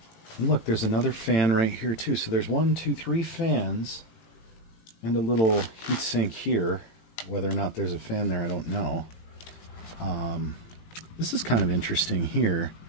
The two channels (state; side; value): late; right; 18 ms